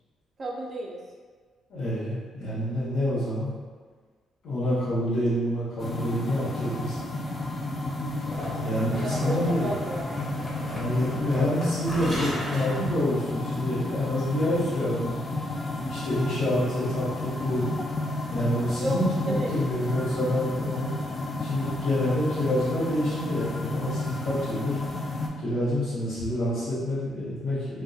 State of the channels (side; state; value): both; normal; correlation 0.74